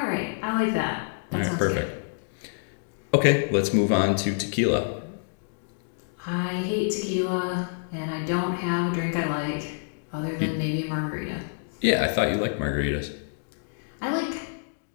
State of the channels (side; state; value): right; silent; digital silence